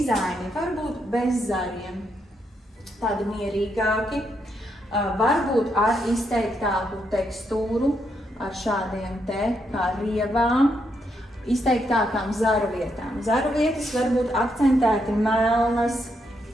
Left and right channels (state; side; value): normal; both; correlation 0.79